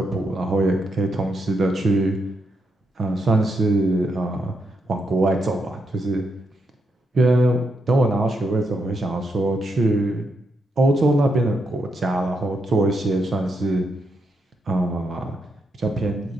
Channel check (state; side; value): normal; both; correlation 0.81